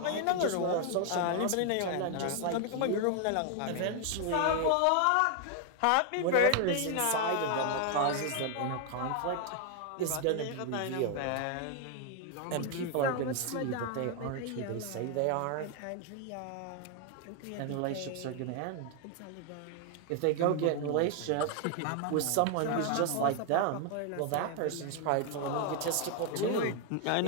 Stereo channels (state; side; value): different; both; correlation 0.00